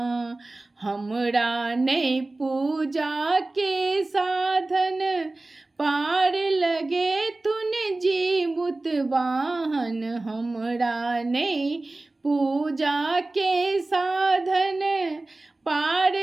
हमरा नहि पूजा के साधन, पार लगे तुन जीमुत वाहन। हमरा नहीं पूजा के साधन, पार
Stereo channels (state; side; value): quieter; left; 3.0 dB